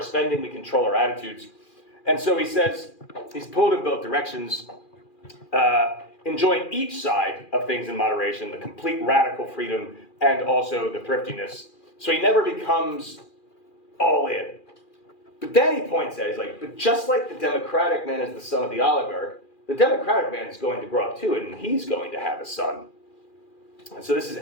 spending, we control our attitudes. And so he says, he's pulled in both directions, enjoying each side of things in moderation, the complete radical freedom, and also the thriftiness. So he never becomes all in. But then he points out, he's like, but just like the democratic man is the son of the oligarch, the democratic man is going to grow up too, and he's going to have a son. And so this is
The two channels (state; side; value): late; right; 2.4 ms